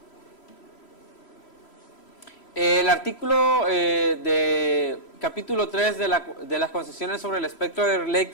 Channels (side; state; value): right; late; 3.1 ms